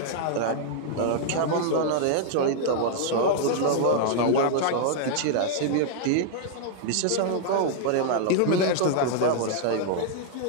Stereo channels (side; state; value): both; different; correlation -0.01